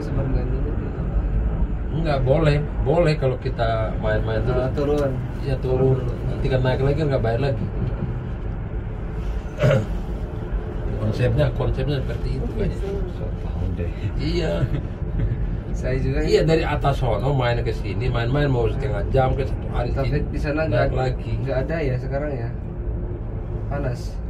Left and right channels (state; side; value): identical; both; correlation 1.00